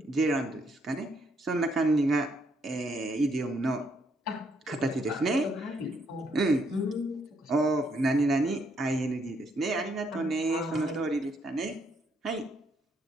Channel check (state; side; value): normal; both; correlation 0.73